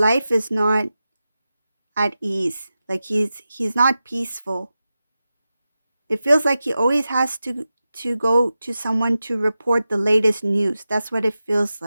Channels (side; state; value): both; inverted; correlation -0.92